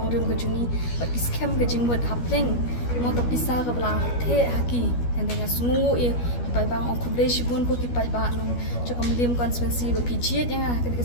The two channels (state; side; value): late; right; 12 ms